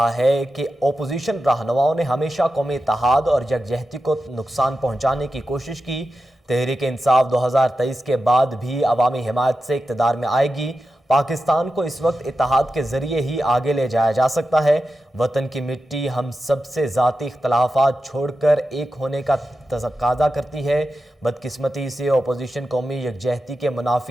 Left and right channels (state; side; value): normal; both; correlation 0.91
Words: ہے کہ اپوزیشن رہنماؤں نے ہمیشہ قومی اتحاد اور یکجہتی کو نقصان پہنچانے کی کوشش کی، تحریک انصاف 2023 کے بعد بھی عوامی حمایت سے اقتدار میں آئے گی۔ پاکستان کو اس وقت اتحاد کے ذریعے ہی آگے لے جایا جا سکتا ہے۔ وطن کی مٹی ہم سب سے ذاتی اختلافات چھوڑ کر ایک ہونے کا تقاضا کرتی ہے۔ بدقسمتی سے اپوزیشن قومی یکجہتی کے